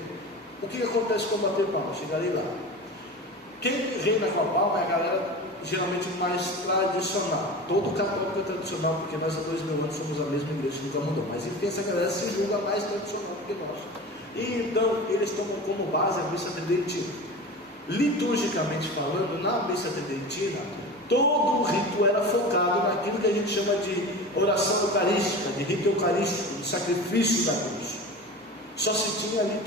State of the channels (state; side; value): normal; both; correlation 0.32